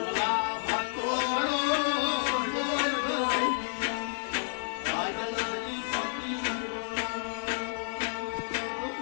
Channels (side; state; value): right; silent; digital silence